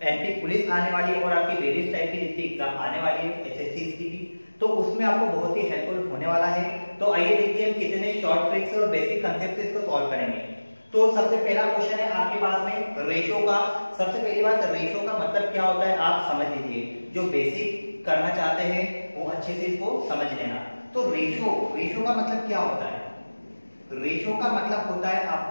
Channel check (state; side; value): inverted; both; correlation -1.00